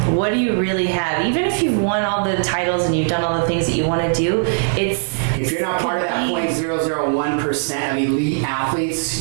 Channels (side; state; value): left; silent; 56 dB below the other